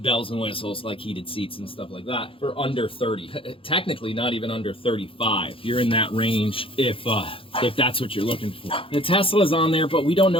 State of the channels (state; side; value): late; right; 0.26 ms